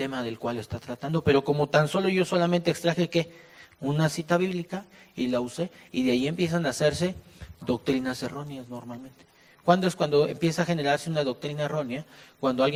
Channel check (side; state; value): both; identical; correlation 1.00